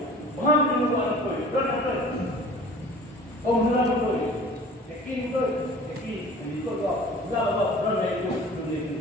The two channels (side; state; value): both; normal; correlation 0.44